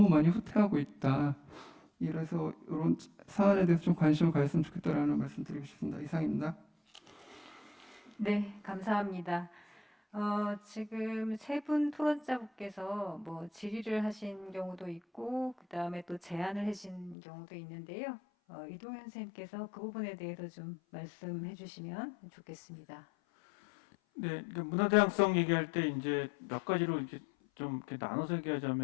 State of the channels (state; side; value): drops out; right; at 17.2 s